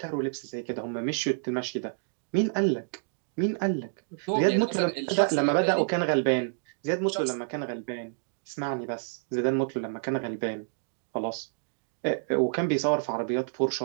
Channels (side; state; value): left; silent; digital silence